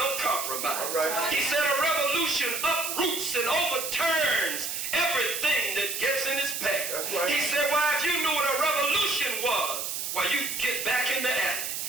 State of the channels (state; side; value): noise; right; hiss, 3 dB below the sound